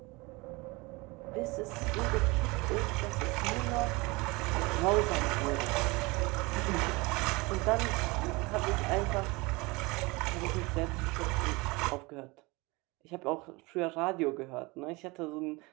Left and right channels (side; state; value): left; quieter; 24.7 dB